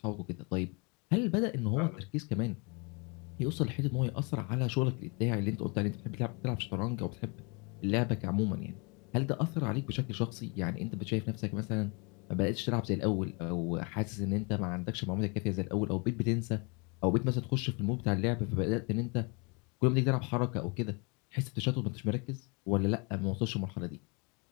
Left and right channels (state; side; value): quieter; right; 31.9 dB